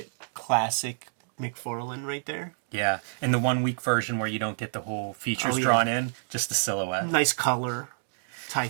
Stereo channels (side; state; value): left; silent; digital silence